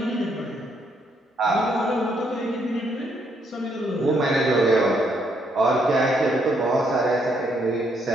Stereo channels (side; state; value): both; normal; correlation 0.73